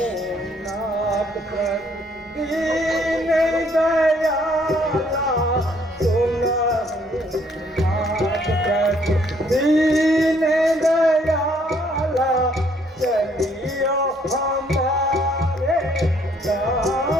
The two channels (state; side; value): normal; both; correlation 0.66